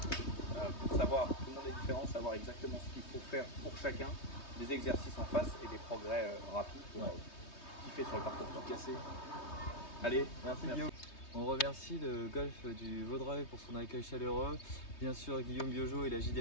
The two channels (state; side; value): late; right; 3.2 ms